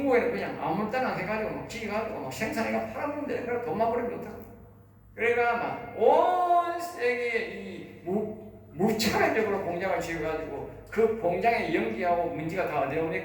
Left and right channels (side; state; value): both; identical; correlation 1.00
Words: 그냥 아무 때나 해가지고 막 지어가지고 막 생산해가 팔아먹으면 되는 거라 돈만 벌면 못하고. 그러니까 막 온 세계에 이 무차별적으로 공장을 지어가지고 그 공장에 연기하고 먼지가 다 어디